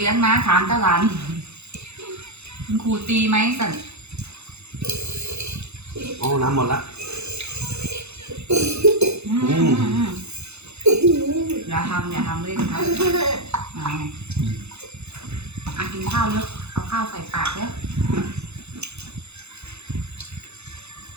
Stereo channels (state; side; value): late; left; 0.81 ms